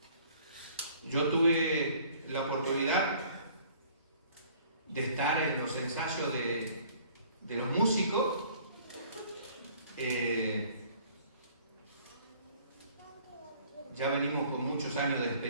Yo tuve la oportunidad de estar en los ensayos de los músicos. Ya venimos con muchos años de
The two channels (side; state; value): both; inverted; correlation -0.55